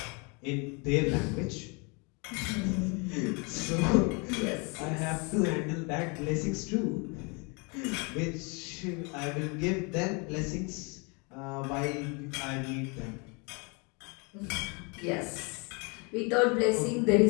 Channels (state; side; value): quieter; right; 31.5 dB